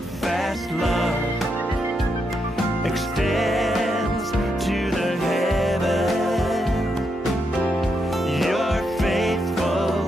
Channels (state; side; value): normal; both; correlation 0.81